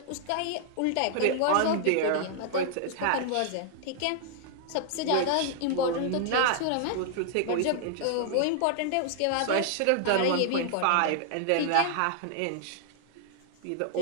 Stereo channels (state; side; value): different; both; correlation -0.01